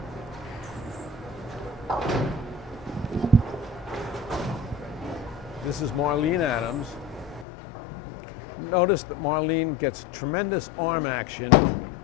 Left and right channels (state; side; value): drops out; right; at 7.5 s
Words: This is Marlene Adams. Notice that Marlene gets tremendous arm action,